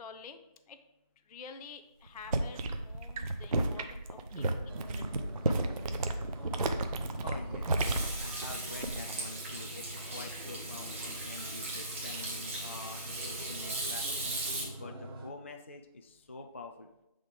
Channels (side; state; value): both; inverted; correlation -0.60